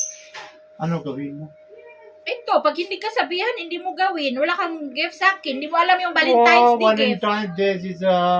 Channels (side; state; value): both; identical; correlation 1.00